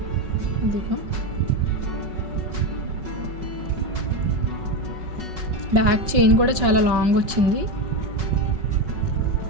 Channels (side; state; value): left; late; 5.3 ms